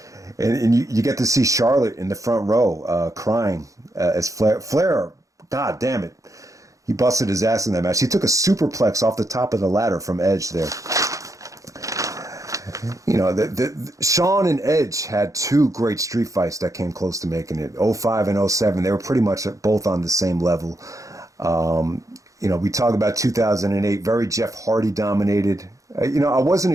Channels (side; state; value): left; late; 0.16 ms